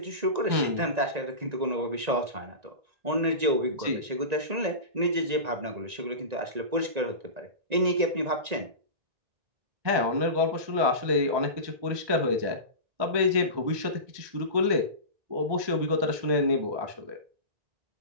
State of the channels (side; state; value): left; late; 1.9 ms